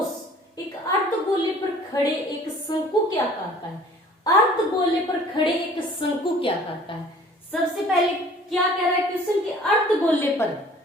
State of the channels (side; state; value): both; normal; correlation 0.51